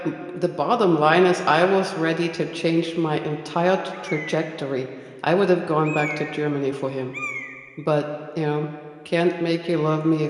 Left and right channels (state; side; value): identical; both; correlation 1.00